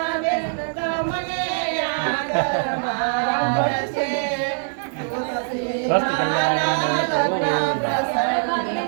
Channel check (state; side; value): silent; left; digital silence